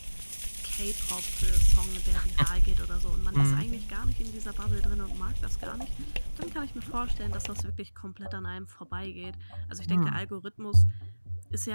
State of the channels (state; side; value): inverted; both; correlation -1.00